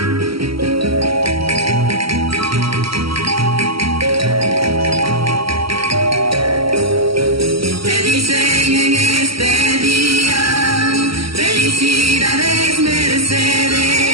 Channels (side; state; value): left; late; 0.75 ms